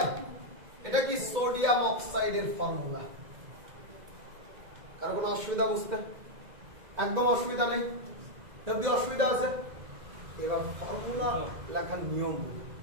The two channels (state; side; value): late; left; 2.0 ms